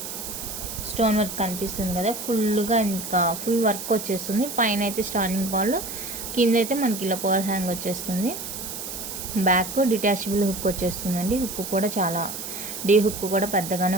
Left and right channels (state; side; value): noise; right; hiss, 7 dB below the sound